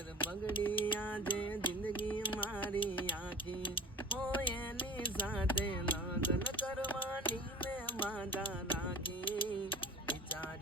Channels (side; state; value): both; normal; correlation 0.37